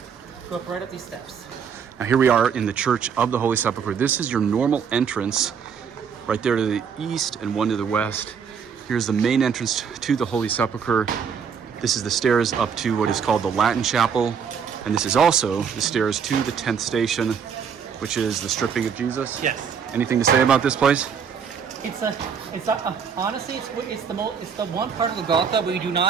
go up right up these steps. now here we are in the Church of the Holy Sepulchre. This is your normal entrance, right there to the east and one to the west. Here's the main entrance to the Holy Sepulchre. This is the stairs up to what is called the Latin Chapel. And this is also the stairs to the 10th station, which is the stripping of Jesus. Yes. Anything to say about this place? Honestly, it's the one part of Golgotha where you do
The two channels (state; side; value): quieter; left; 6.9 dB